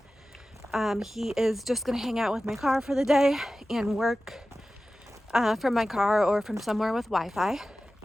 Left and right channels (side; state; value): both; normal; correlation 0.95